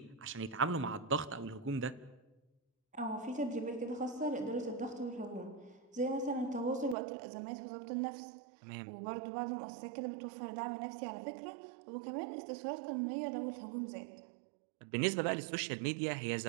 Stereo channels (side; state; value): left; drops out; at 7.0 s